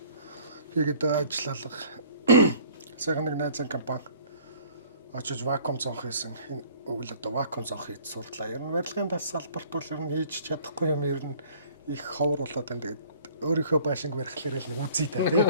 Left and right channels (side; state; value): both; inverted; correlation -0.53